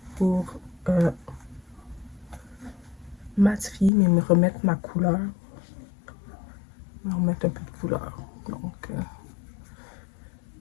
pour matifier, mais me remettre ma couleur. Me remettre un peu de couleur. Donc, ok.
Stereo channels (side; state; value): right; drops out; at 3.9 s